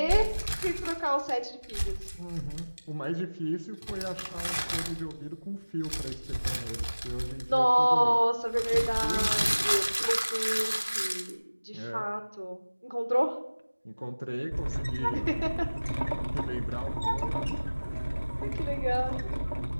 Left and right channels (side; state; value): both; inverted; correlation -1.00